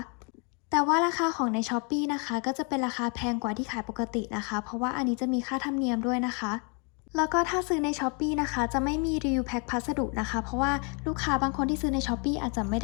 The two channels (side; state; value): right; quieter; 35.1 dB